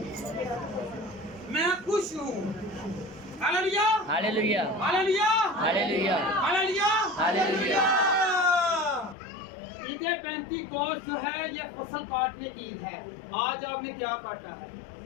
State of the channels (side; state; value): right; drops out; at 9.2 s